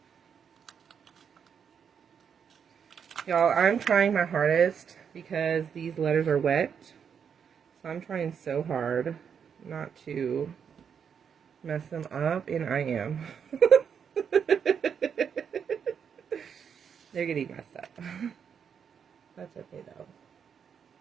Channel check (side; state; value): left; quieter; 7.3 dB